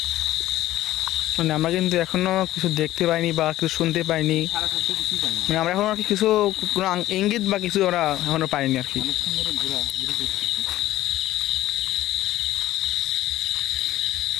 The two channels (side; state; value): right; quieter; 14.9 dB